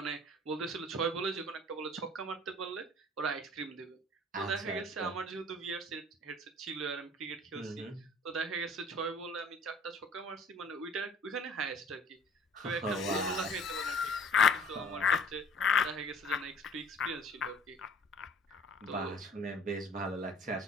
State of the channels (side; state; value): both; normal; correlation 0.50